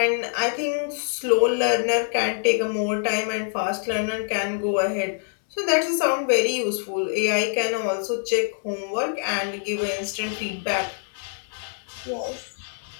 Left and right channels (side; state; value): right; silent; 62 dB below the other